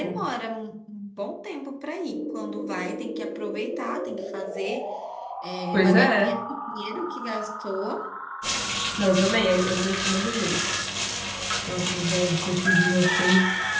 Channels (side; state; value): both; identical; correlation 1.00